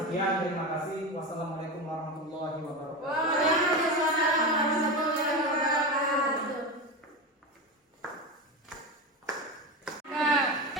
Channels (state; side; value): normal; both; correlation 0.20